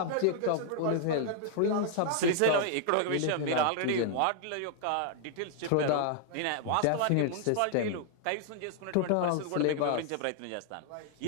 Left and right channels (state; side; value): different; both; correlation 0.00